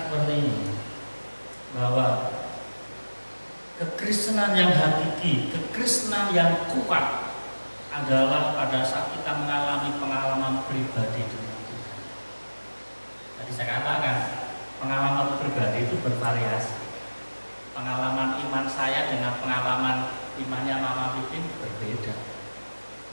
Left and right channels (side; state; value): both; inverted; correlation -1.00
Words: seperti ini, bahwa kekristenan yang hakiki, kekristenan yang kuat adalah pada saat kita mengalami pengalaman pribadi dengan Tuhan. Tadi saya katakan, pengalaman pribadi itu bervariasi. Pengalaman iman saya dengan pengalaman imannya Mama Pipin berbeda.